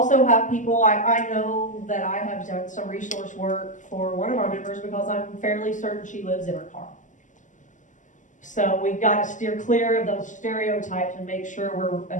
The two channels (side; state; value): right; late; 0.37 ms